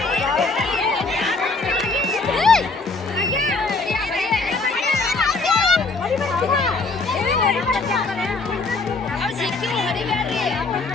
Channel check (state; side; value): quieter; right; 3.7 dB